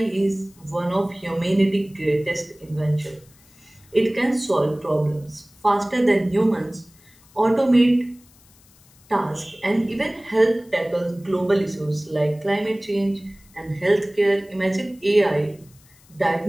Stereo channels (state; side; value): noise; left; hiss, 28 dB below the sound